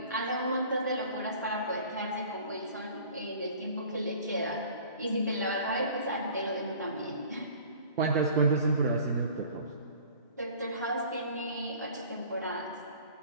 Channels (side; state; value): both; inverted; correlation -0.47